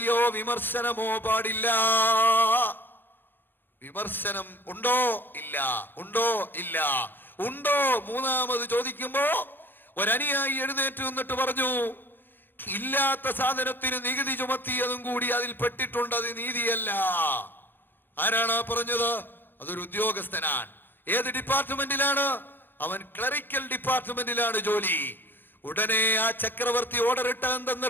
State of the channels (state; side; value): late; right; 0.097 ms